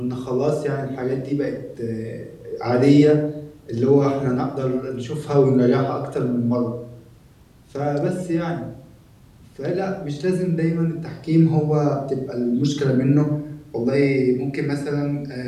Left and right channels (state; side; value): identical; both; correlation 1.00